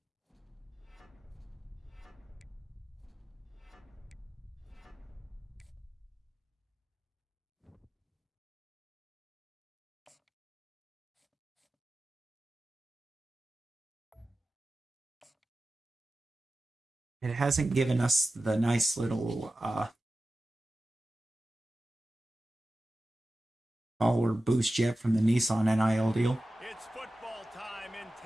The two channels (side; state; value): both; normal; correlation 0.94